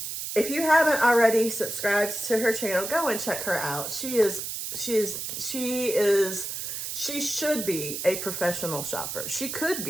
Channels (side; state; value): right; noise; hiss, 5 dB below the sound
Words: If you haven't already subscribed to her channel, go and check her out. She should be a professional shopper. She could